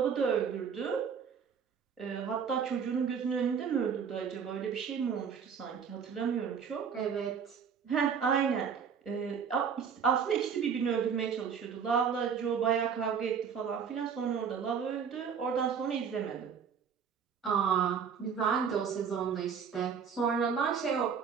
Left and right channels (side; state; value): left; quieter; 6.9 dB